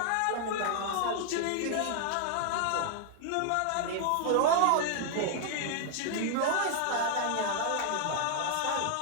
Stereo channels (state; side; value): different; both; correlation -0.01